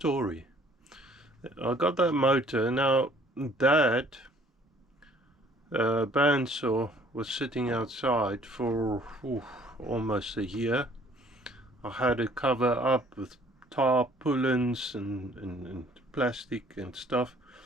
I got that motor. Now that bandsaw was sitting outside for almost a year. I had it covered up with tarpaulins and plastic and stuff,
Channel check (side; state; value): both; normal; correlation 0.57